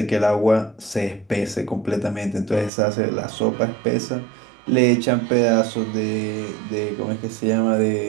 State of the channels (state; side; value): drops out; left; at 2.7 s